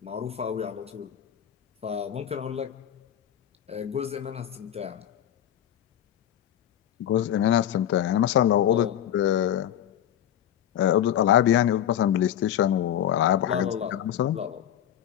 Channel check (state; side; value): quieter; right; 10.6 dB